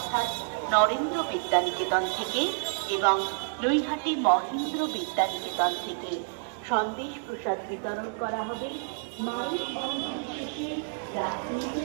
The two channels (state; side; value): silent; left; 59 dB below the other